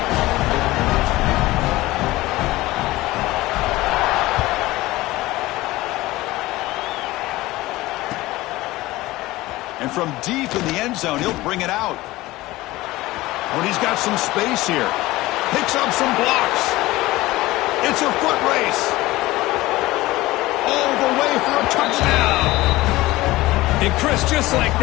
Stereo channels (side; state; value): right; quieter; 18.6 dB